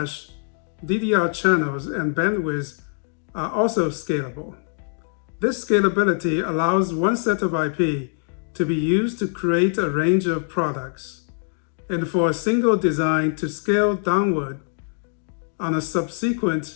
DDR channels, and bandwidth are also scalable. This scalability allows one set of IP to be used to create a range of products, and for a single design to scale downward on a subsequent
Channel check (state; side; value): silent; right; 57 dB below the other